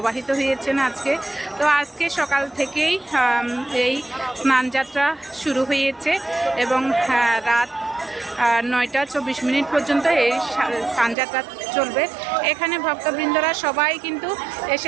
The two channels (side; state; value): left; drops out; at 11.2 s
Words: হয়েছেন আজকে। তো আজকে সকাল থেকেই এই স্নানযাত্রা শুরু হয়েছে এবং রাত 9:24 পর্যন্ত এই স্নানযাত্রা চলবে। এখানে ভক্তবৃন্দরা সবাই কিন্তু